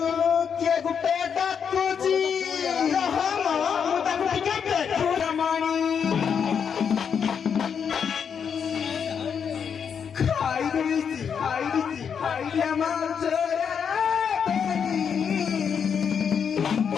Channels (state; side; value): quieter; right; 7.1 dB